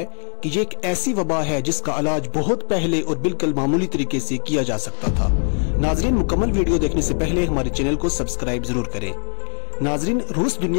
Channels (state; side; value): silent; right; digital silence